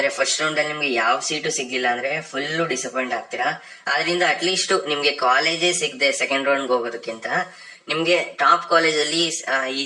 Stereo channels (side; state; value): both; identical; correlation 1.00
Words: ಫಸ್ಟ್ ರೌಂಡ್ ಅಲ್ಲಿ ನಿಮ್ಗೆ ಯಾವ ಸೀಟು ಸಿಗ್ಲಿಲ್ಲ ಅಂದ್ರೆ ಫುಲ್ ಡಿಸಪಾಯಿಂಟ್ ಆಗ್ತೀರಾ. ಆದ್ರಿಂದ ಅಟ್ಲೀಸ್ಟ್ ನಿಮ್ಗೆ ಕಾಲೇಜೇ ಸಿಗದೆ ಸೆಕೆಂಡ್ ರೌಂಡ್ ಹೋಗೋದಕ್ಕಿಂತ ನಿಮ್ಗೆ ಟಾಪ್ ಕಾಲೇಜ್ ಅಲ್ಲಿ